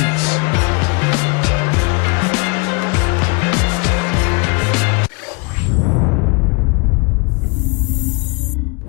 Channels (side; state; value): right; quieter; 31.1 dB